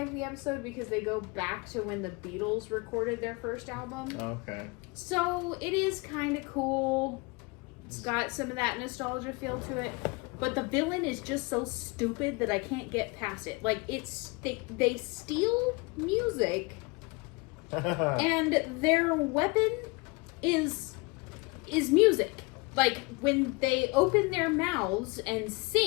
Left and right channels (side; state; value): right; quieter; 27.6 dB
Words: the episode because they go back to when the Beatles recorded their first album. Okay. So, it is kind of cool. It's got some of that nostalgia feel to it. But the villain is just so stupid that I can't get past it. Like, they steal music, and their weapon is music. Like, when they open their mouths and